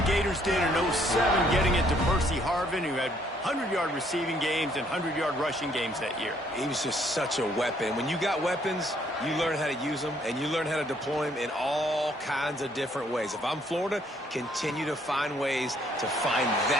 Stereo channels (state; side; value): normal; both; correlation 0.66